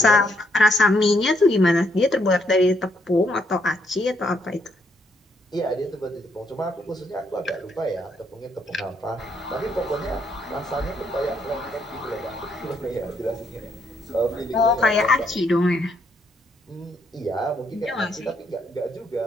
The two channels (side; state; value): both; normal; correlation 0.73